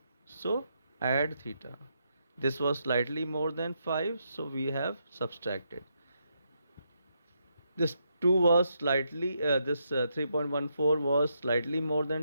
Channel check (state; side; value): inverted; both; correlation -0.80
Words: so add theta. This was slightly more than 5, so we have subtracted. This 2 was slightly, this 3.14 was slightly more